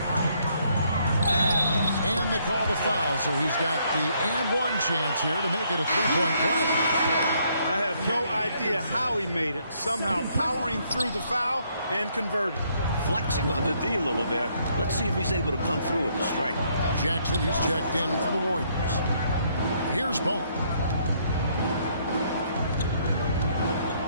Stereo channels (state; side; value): inverted; both; correlation -0.69